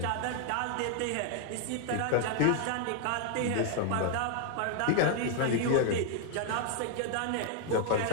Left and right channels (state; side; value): different; both; correlation 0.00